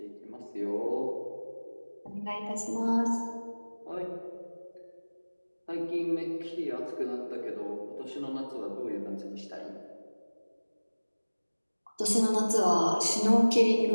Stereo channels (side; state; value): both; inverted; correlation -1.00